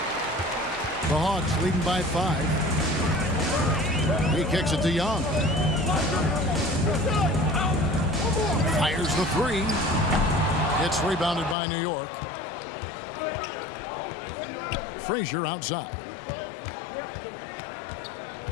The Hawks leading by 5. He kicks it to Young. Fires the 3. It's rebounded by New York. Frazier outside.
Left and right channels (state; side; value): drops out; right; at 11.6 s